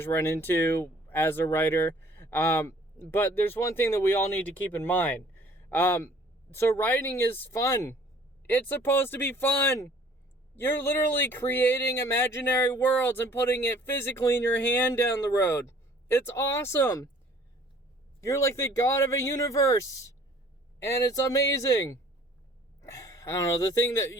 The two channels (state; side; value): normal; both; correlation 0.54